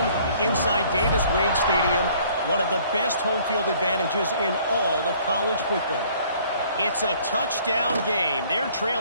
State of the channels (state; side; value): inverted; both; correlation -0.58